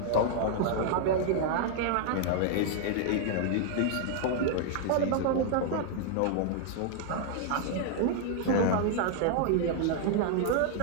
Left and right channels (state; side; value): different; both; correlation 0.00